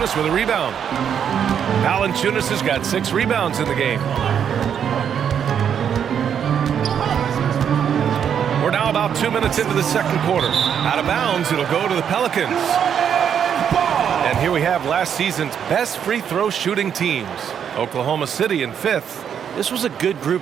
with a rebound. Valanciunas has got 6 rebounds in the game. We're now about 2 minutes into the second quarter. Out of bounds, it'll go to the Pelicans. And here we have last season's best free throw shooting teams. Oklahoma City in 5th. This was a good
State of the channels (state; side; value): quieter; left; 8.3 dB